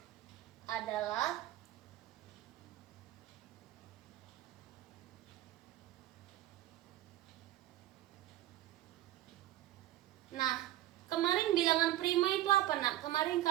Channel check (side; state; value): left; quieter; 14.8 dB